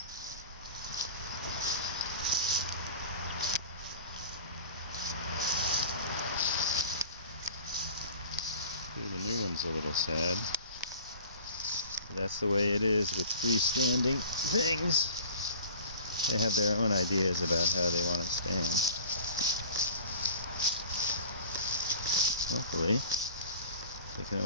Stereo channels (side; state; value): both; inverted; correlation -0.42